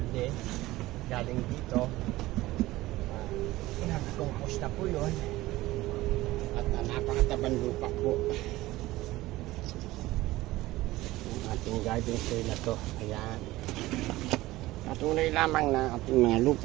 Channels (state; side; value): quieter; left; 17.8 dB